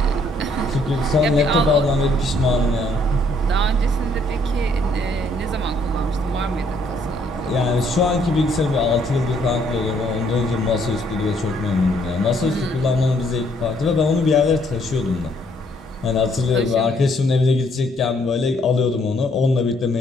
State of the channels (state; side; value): normal; both; correlation 0.67